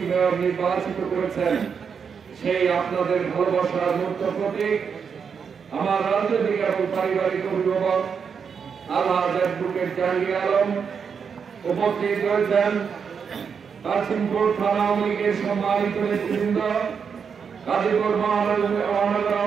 মেয়র নির্বাচিত করেছেন। সেই আপনাদের ভালোবাসার মূর্ত প্রতীক আমার রাজনৈতিক এবং পারিবারিক অভিভাবক আলহাজ অ্যাডভোকেট জাহাঙ্গীর আলম উপস্থিত রয়েছেন। কাশিমপুর থানা আওয়ামী লীগের সম্মানিত নেতৃবৃন্দ, গাজীপুর মহানগর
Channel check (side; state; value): left; quieter; 6.4 dB